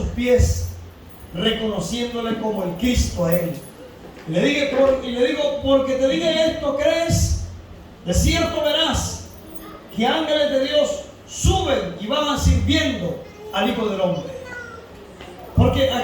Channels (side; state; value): both; identical; correlation 1.00